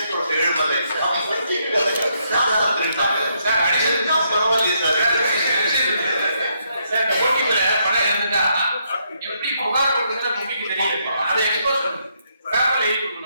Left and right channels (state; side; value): inverted; both; correlation -0.75